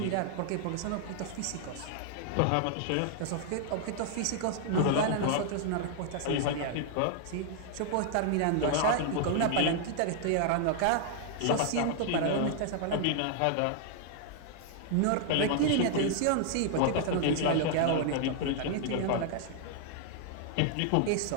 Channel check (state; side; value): different; both; correlation 0.00